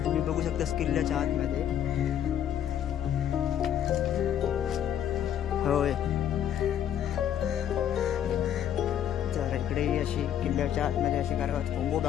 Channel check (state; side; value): quieter; right; 9.9 dB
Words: तुम्ही बघू शकतास किल्ल्याच्या आतमध्ये. होय तर इकडे अशी किल्ल्याच्या आतमध्ये अशी घरं आहेत. कोंबो